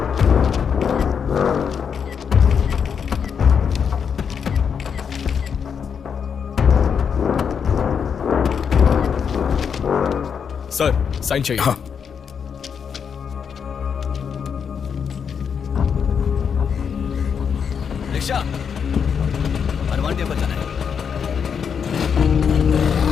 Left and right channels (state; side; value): quieter; right; 6.9 dB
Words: सर साइन चाहिए। हाँ रिक्शा, हनुमान टेम्पल जाना है।